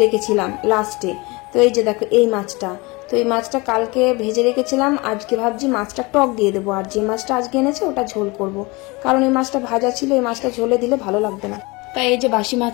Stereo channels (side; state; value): right; quieter; 25.3 dB